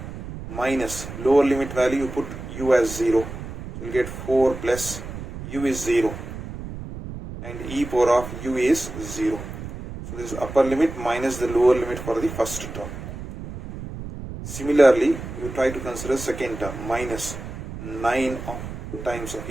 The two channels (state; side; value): noise; right; rumble, 10 dB below the sound